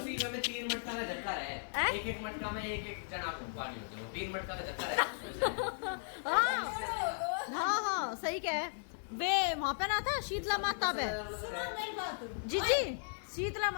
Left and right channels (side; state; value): right; silent; digital silence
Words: में 3 मटका का झटका है एक मटका में एक जना को पानी होती है 3 मटका का झटका है हाँ सही कह वे वहाँ पे ना था शीतला माता पे जी शीतला